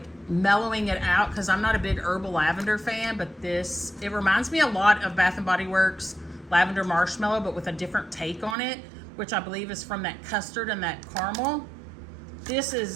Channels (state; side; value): drops out; left; at 8.6 s